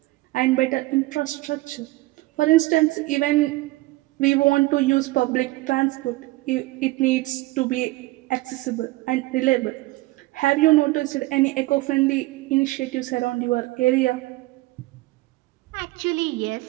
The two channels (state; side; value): quieter; left; 19.8 dB